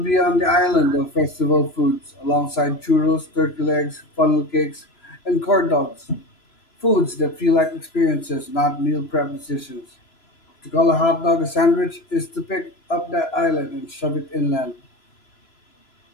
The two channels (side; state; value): right; late; 3.0 ms